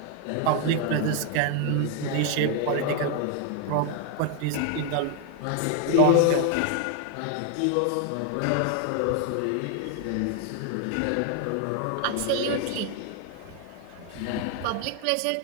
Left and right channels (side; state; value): both; different; correlation 0.01